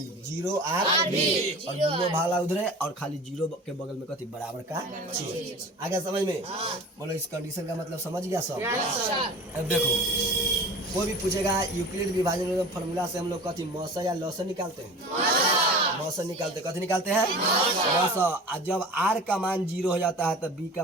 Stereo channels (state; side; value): normal; both; correlation 0.38